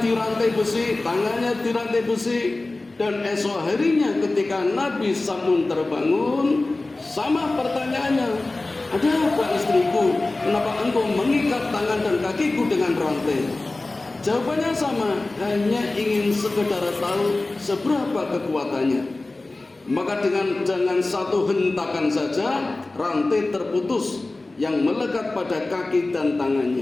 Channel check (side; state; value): right; quieter; 3.1 dB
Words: dirantai besi, tangannya dirantai besi. Dan esok harinya ketika Nabi Sam'un terbangun, sama pertanyaannya, "Ada apa istriku? Kenapa engkau mengikat tangan dan kakiku dengan rantai?" Jawabannya sama, hanya ingin sekedar tahu seberapa kekuatannya. Maka dengan satu hentakan saja, rantai terputus yang melekat pada kaki dan